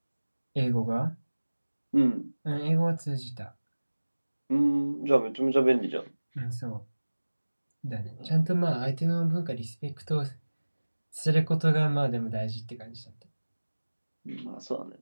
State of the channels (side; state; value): both; inverted; correlation -1.00